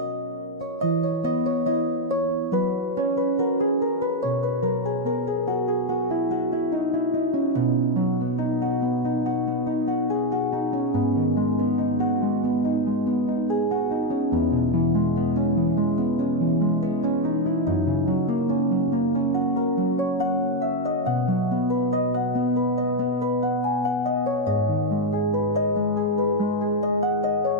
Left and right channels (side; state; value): both; normal; correlation 0.06